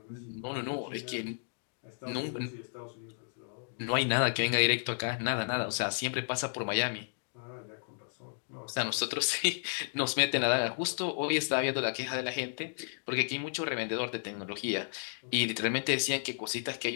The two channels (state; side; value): silent; right; digital silence